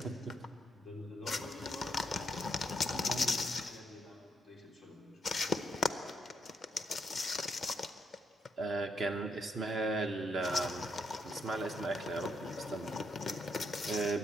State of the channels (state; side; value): normal; both; correlation 0.77